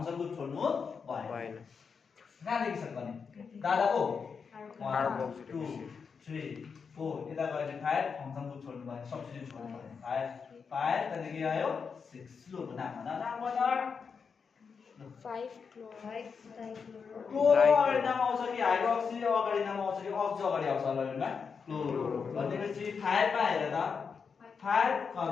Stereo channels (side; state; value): right; quieter; 5.8 dB